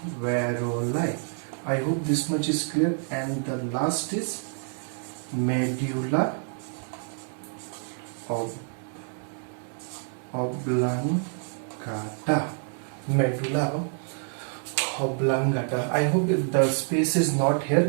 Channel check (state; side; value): silent; left; 60 dB below the other